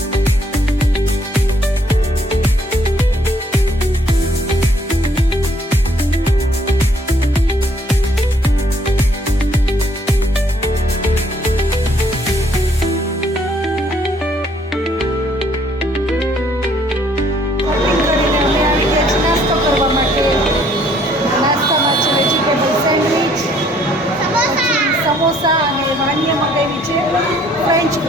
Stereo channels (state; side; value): normal; both; correlation 0.64